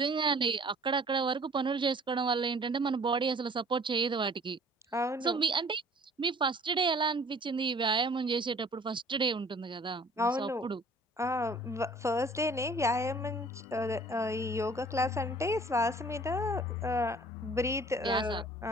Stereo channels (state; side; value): normal; both; correlation 0.52